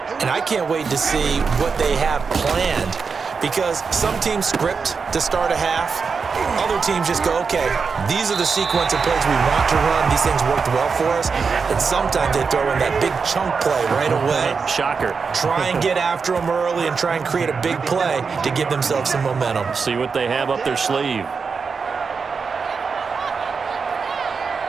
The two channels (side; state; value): left; quieter; 5.3 dB